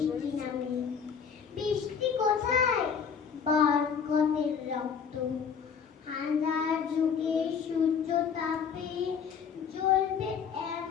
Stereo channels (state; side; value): quieter; right; 6.8 dB